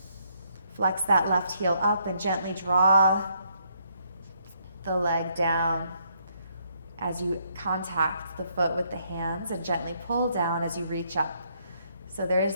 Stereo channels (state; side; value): inverted; both; correlation -0.72